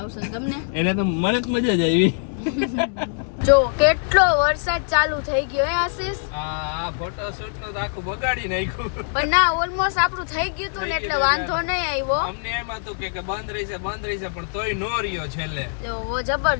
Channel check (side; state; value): right; silent; digital silence